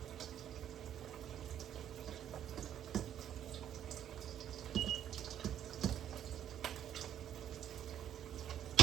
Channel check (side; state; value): left; quieter; 10.3 dB